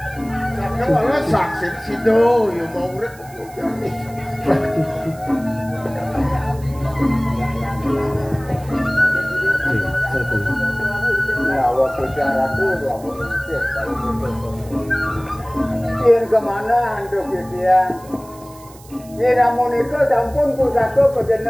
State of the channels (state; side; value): noise; right; hiss, 23 dB below the sound